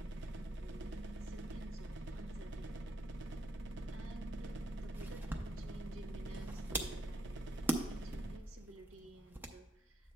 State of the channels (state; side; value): normal; both; correlation 0.77